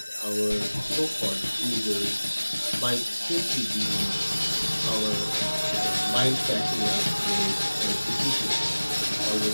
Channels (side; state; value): both; inverted; correlation -1.00